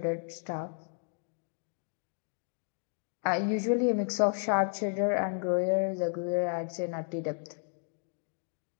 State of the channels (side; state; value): right; silent; 56 dB below the other